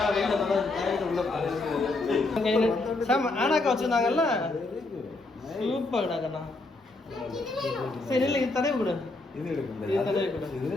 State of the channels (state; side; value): quieter; right; 3.1 dB